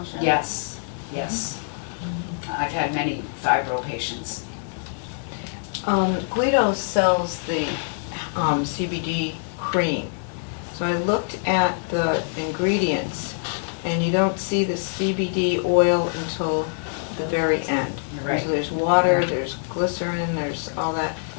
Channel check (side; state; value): right; silent; digital silence